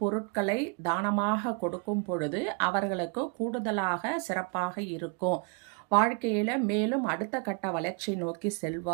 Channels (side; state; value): left; quieter; 37.6 dB